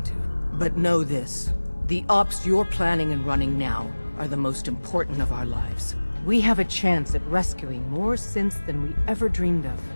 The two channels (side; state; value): both; inverted; correlation -1.00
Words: to. But know this, the ops you're planning and running now are the most important of our lives. We have a chance at rescuing more synths than we ever dreamed of.